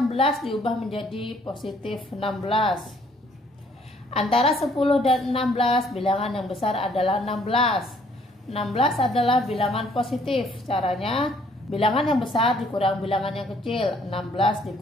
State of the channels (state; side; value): normal; both; correlation 0.63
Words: diubah menjadi positif 16. Antara 10 dan 16 bilangan yang besar adalah 16. 16 adalah bilangan positif. Caranya bilangan yang besar dikurang bilangan yang kecil. 16